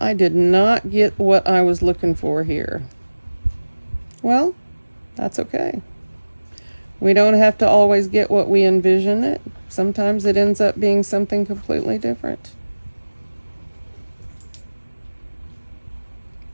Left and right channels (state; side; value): inverted; both; correlation -1.00